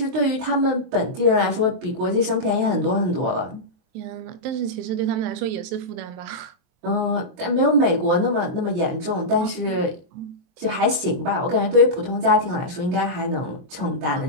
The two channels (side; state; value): left; late; 23 ms